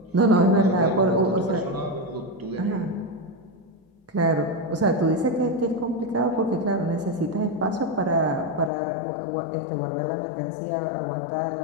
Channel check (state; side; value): drops out; right; at 8.7 s